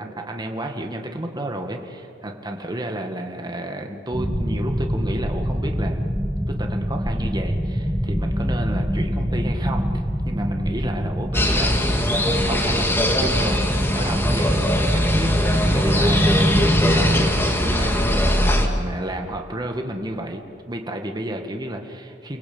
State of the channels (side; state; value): both; normal; correlation 0.72